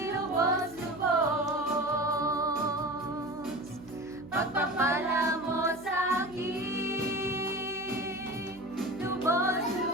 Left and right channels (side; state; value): right; noise; hum, 22 dB below the sound